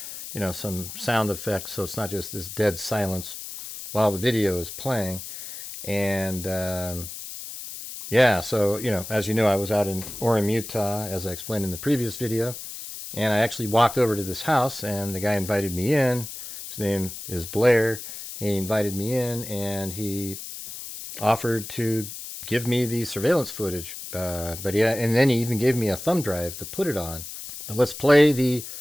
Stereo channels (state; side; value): noise; left; hiss, 10 dB below the sound